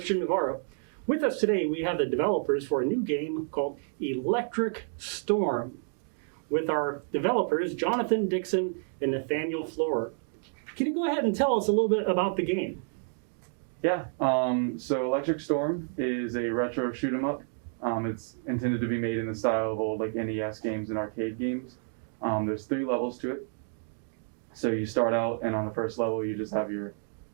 Navarro. With us today, we have the developers for a new game called Electric Storm, with our developers, Jonathan Dixon and Nathaniel Florer. Can you go ahead and tell us a little bit about the game? Yeah, so Electric Storm is a retro shoot 'em up. It's intended to be made in the style of old NES games and arcade games. There's 3 levels to it. So you start out, and on the first level, you just have your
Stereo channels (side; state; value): left; silent; 58 dB below the other